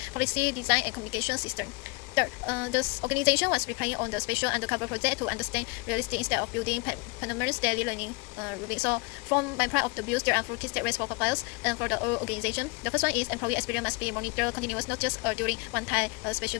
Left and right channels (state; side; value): quieter; right; 28.0 dB